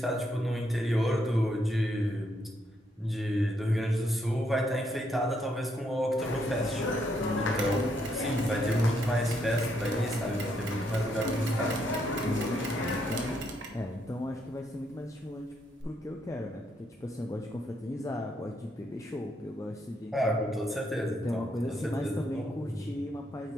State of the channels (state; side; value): normal; both; correlation 0.75